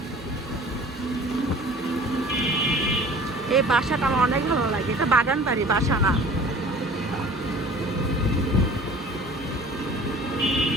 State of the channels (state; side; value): normal; both; correlation 0.46